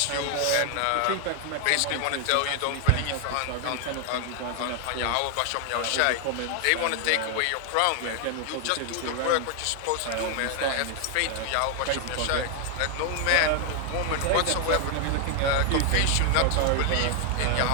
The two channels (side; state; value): both; different; correlation 0.00